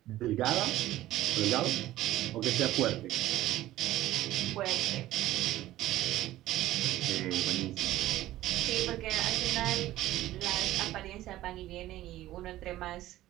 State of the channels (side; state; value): left; quieter; 15.1 dB